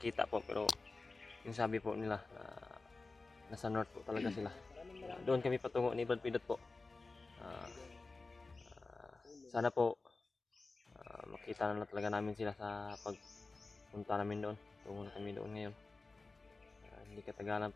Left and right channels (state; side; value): quieter; right; 3.6 dB